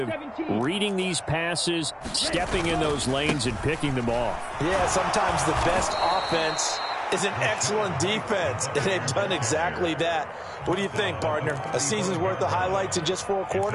reading these passes, stepping in those lanes, and picking them off. Yeah, sometimes the best offense is an excellent defense, and they've done exactly that. What do you think, partner? A season's worth of highlights in just 4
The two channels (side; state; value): both; identical; correlation 1.00